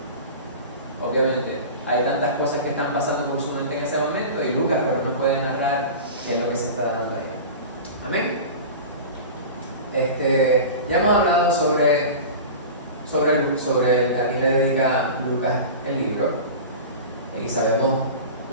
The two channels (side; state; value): both; inverted; correlation -0.33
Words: Obviamente, hay tantas cosas que están pasando por su mente en ese momento y Lucas pero no puede narrar qué es lo que se está dando ahí. Amén. Ya hemos hablado sobre a quién le dedica Lucas el libro y sabemos